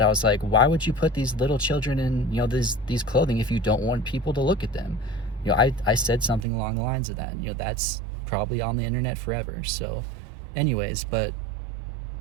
I was like, why would you put these little children in, you know, these clothing if you don't want people to look at them? You know, I said something along the lines of that. You know, that's probably on the internet forever. So anyways, like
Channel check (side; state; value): left; drops out; at 6.5 s